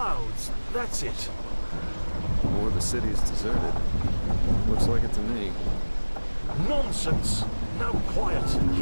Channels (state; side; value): inverted; both; correlation -1.00